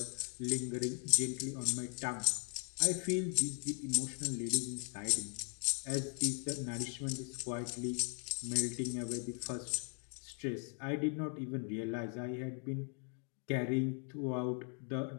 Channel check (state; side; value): quieter; right; 36.3 dB